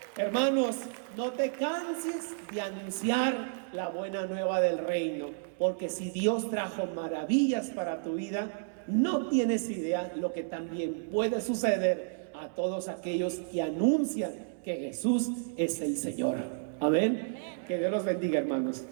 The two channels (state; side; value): silent; left; digital silence